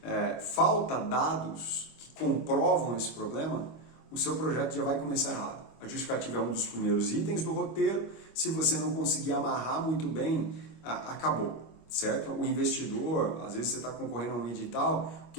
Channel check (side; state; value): right; late; 25 ms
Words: falta dados que comprovam esse problema, o seu projeto já vai começar errado. A justificativa é um dos primeiros itens do roteiro. Se você não conseguir amarrar muito bem, acabou. Certo? O investidor, às vezes você está concorrendo a um edital, o que